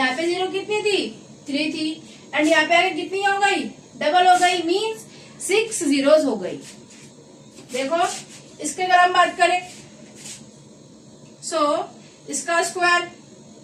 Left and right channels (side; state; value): both; identical; correlation 1.00